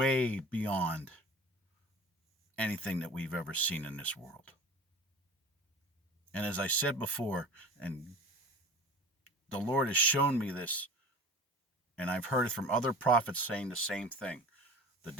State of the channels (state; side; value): normal; both; correlation 0.38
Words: beyond anything that we've ever seen in this world. And as I said before, and the Lord has shown me this, and I've heard it from other prophets saying the same thing. The